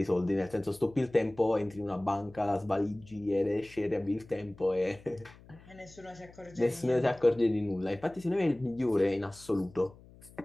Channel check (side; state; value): left; noise; hum, 22 dB below the sound